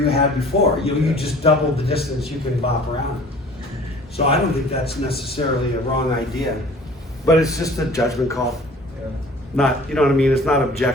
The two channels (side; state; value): both; normal; correlation 0.48